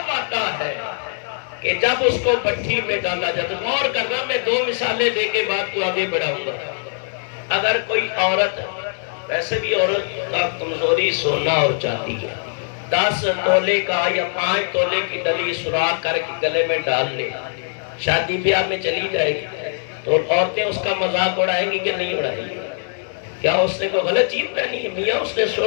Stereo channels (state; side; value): silent; right; digital silence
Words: آتا ہے کہ جب اس کو بھٹی میں ڈالا جاتا۔ غور کرنا، میں 2 مثالیں دے کے بات کو آگے بڑھاؤں گا۔ اگر کوئی عورت، ویسے بھی عورت کا کمزوری سونا اور چاندی ہے، 10 تولے کا یا 5 تولے کی ڈلی سوراخ کر کے گلے میں ڈال لے، شادی بیاہ میں چلی جائے گی تو عورتیں اس کا مذاق اڑائیں گی کہ نہیں اڑائیں گی؟ کیا اس نے کوئی غلط چیز پہنی ہے؟ میاں اس نے